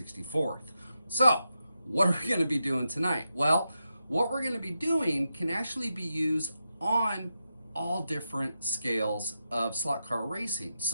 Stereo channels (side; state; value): both; inverted; correlation -0.88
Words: So, what are we going to be doing tonight? Well, what we're going to be doing can actually be used on all different scales of slot car racing.